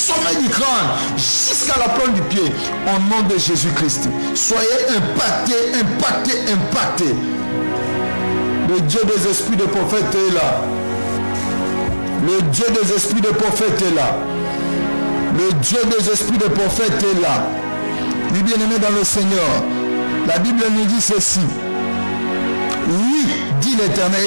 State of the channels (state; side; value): inverted; both; correlation -1.00